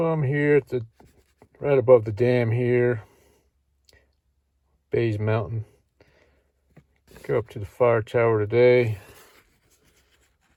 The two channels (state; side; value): identical; both; correlation 1.00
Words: I'm here at the right above the dam here, Bays Mountain. Go up to the fire tower today.